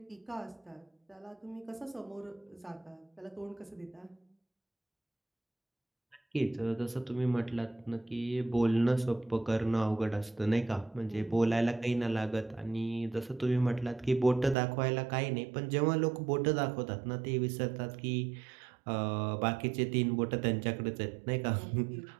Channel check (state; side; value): drops out; left; at 14.6 s